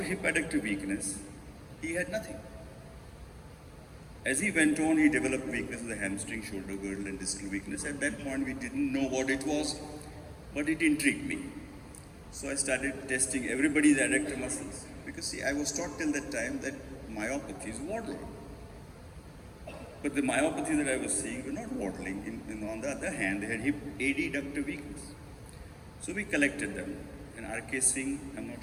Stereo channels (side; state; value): both; identical; correlation 1.00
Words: hip adductor weakness, he had nothing. As he went on, he developed weakness of the hamstring, shoulder girdle, and distal weakness. At that point, we didn't know what it was, but it intrigued me. So I started testing everybody's adductor muscles. Because see, I was taught till that time that myopathies waddle. But the myopathies that I was seeing were not waddling. On the other hand, they had hip adductor weakness. So we collected them. And R.K. Singh, I'm not